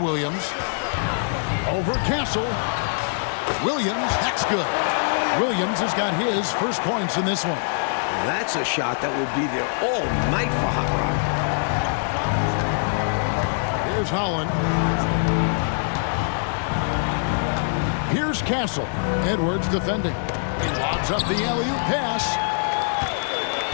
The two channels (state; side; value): silent; right; digital silence